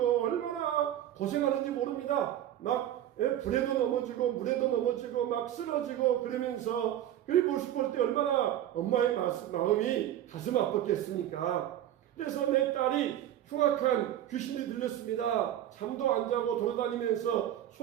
얼마나 고생하는지 모릅니다. 막 불에도 넘어지고 물에도 넘어지고 막 쓰러지고 그러면서 그 모습 볼 때 얼마나 엄마의 마음이 가슴 아팠겠습니까? 그래서 내 딸이 흉악한 귀신이 들렸습니다. 잠도 안 자고 돌아다니면서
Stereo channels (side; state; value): left; quieter; 11.9 dB